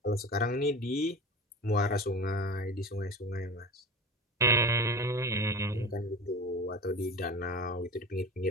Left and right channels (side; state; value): both; normal; correlation 0.32